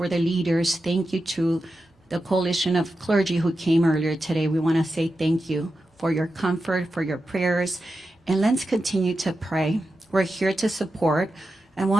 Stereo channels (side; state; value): both; normal; correlation 0.90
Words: the leaders, thank you to the coalition of clergy who came earlier today. We want to say thank you for your comfort, for your prayers, and let's continue to pray. We're here to support. And